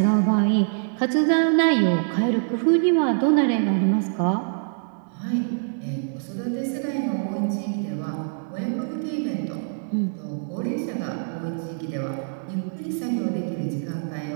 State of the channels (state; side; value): silent; left; digital silence